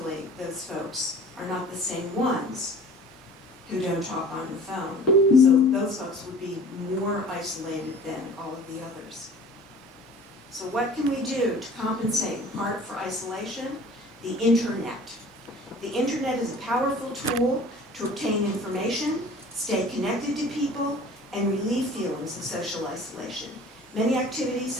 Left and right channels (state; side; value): normal; both; correlation 0.46